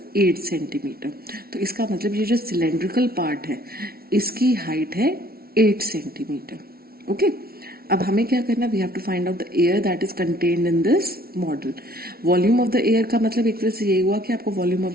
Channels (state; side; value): late; left; 0.44 ms